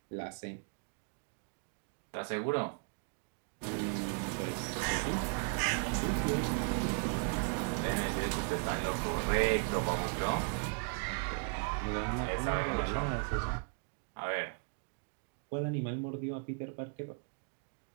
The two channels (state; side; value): quieter; left; 39.2 dB